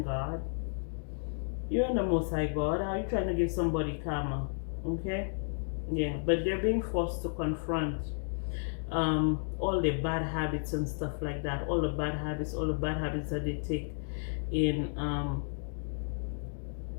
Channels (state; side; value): silent; right; digital silence